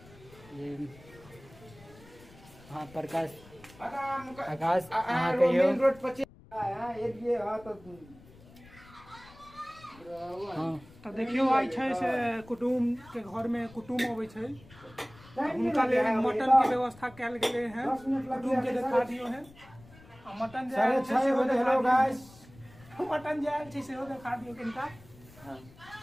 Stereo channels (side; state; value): left; noise; rumble, 22 dB below the sound